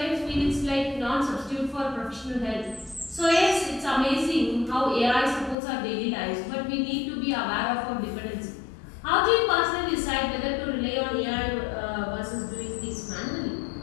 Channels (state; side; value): drops out; right; at 5.6 s